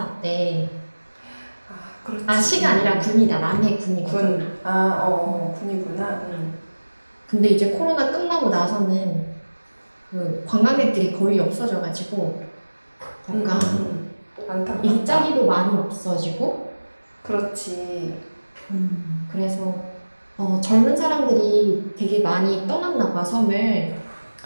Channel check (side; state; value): both; inverted; correlation -1.00